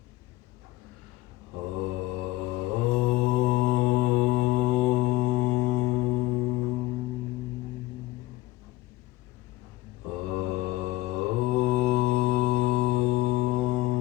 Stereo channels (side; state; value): right; quieter; 17.9 dB